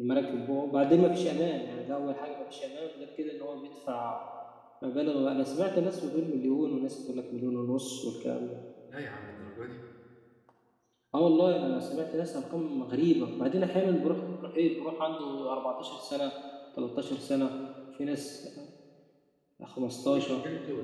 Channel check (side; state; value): both; identical; correlation 1.00